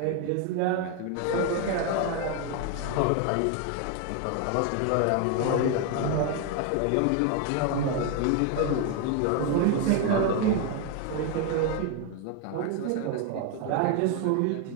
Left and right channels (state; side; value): different; both; correlation 0.01